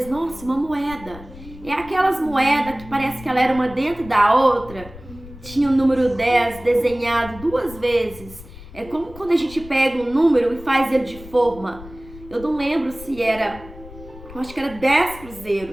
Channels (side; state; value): left; noise; rumble, 17 dB below the sound